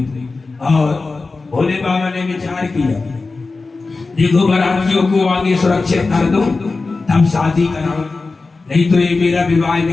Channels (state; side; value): quieter; right; 3.8 dB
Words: और भोले बाबा ने विचार किया, देखो बारातियों को आगे सुरक्षित कर दो तब शादी कराओ, नहीं तो ये मेरा विवाह